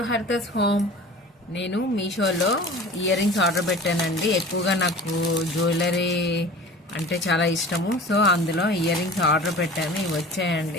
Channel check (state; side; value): normal; both; correlation 0.40